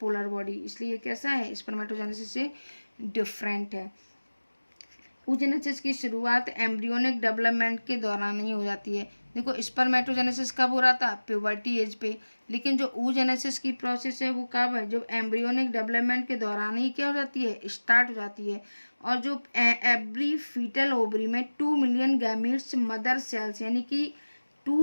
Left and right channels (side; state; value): both; inverted; correlation -1.00